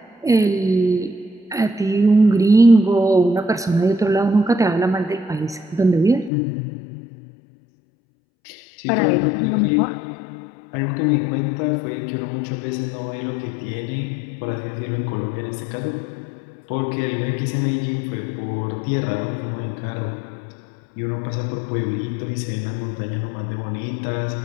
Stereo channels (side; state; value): right; drops out; at 6.3 s